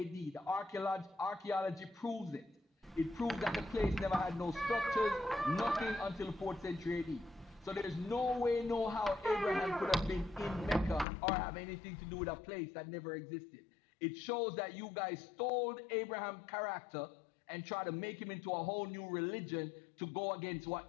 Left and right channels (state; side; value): drops out; right; at 11.1 s